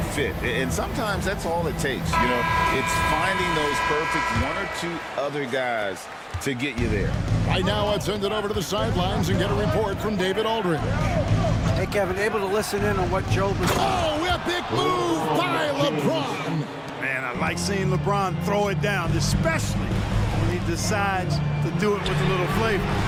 fit. And sometimes that's all it takes. You know, it's finding those perfect one or two other guys to get you there. Right now, let's send it over to the sidelines and get a report from David Aldridge. Hey, Kevin, able to listen in on what Joe was... Oh, epic move by LeBron. Man, I like seeing LeBron throw it down, especially when he decides to do it with a little flavor.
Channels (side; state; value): both; identical; correlation 1.00